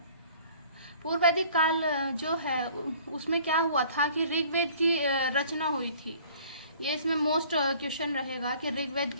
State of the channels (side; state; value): both; inverted; correlation -0.51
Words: पूर्व वैदिक काल जो है उसमें क्या हुआ था कि ऋग्वेद की रचना हुई थी। ये इसमें मोस्ट क्वेश्चन रहेगा कि ऋग्वेद